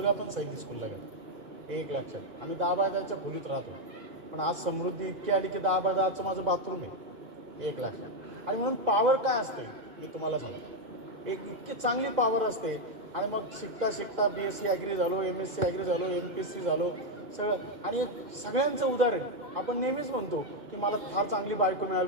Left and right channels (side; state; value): left; late; 2.0 ms